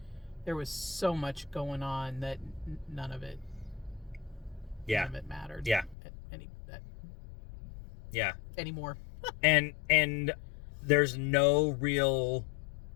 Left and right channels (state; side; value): drops out; right; at 6.0 s